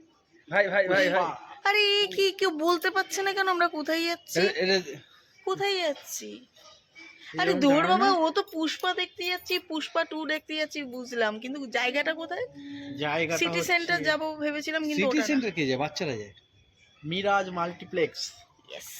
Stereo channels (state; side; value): identical; both; correlation 1.00